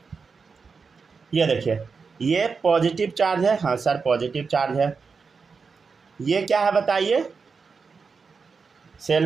ये देखिए, ये पॉजिटिव चार्ज है, हाँ सर पॉजिटिव चार्ज है। ये क्या है बताइए,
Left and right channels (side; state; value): left; quieter; 5.1 dB